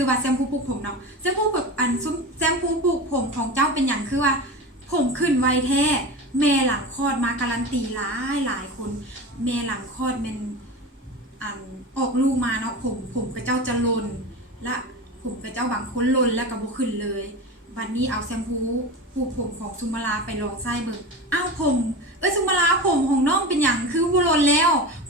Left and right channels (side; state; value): both; normal; correlation 0.27